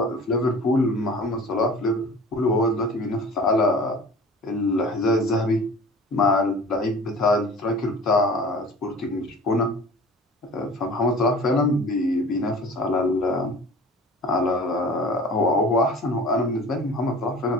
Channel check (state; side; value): normal; both; correlation 0.42